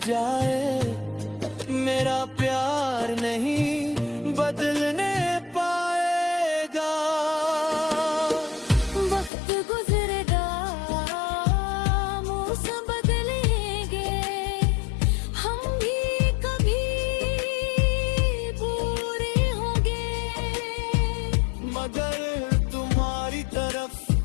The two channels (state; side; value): drops out; right; at 9.3 s